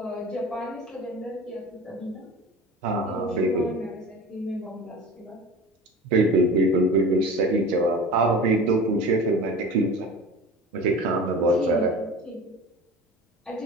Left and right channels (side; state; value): both; normal; correlation 0.36